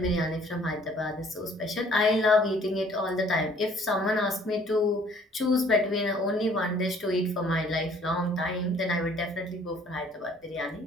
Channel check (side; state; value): both; normal; correlation 0.58